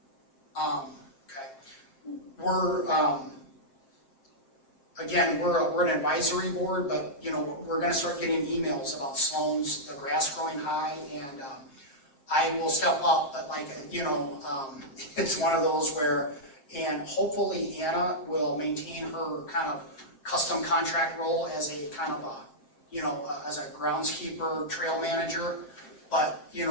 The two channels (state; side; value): late; right; 7.4 ms